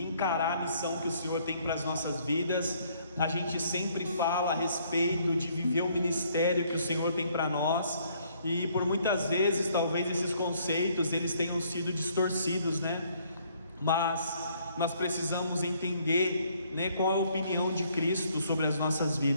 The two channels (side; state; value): both; inverted; correlation -0.65